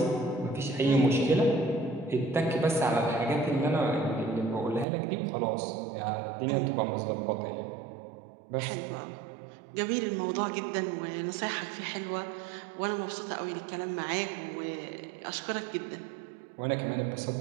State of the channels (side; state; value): left; drops out; at 4.9 s